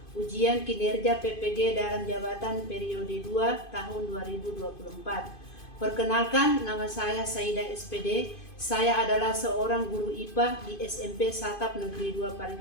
ujian kinerja PPG dalam jabatan periode 2 tahun 2024. Perkenalkan, nama saya Saida SPD. Saya adalah seorang guru IPA di SMP Satap Negeri 2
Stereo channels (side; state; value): right; late; 2.5 ms